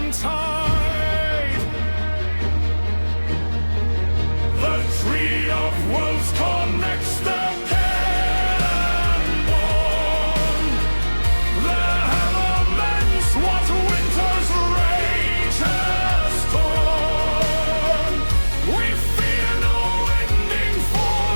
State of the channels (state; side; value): inverted; both; correlation -1.00